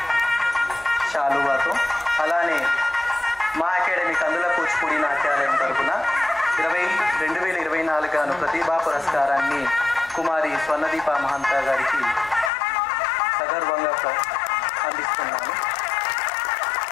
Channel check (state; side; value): drops out; right; at 12.5 s